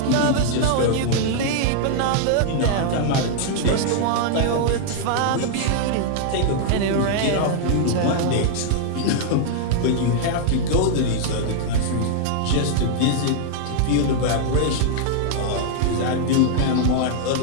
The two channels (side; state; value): both; different; correlation -0.01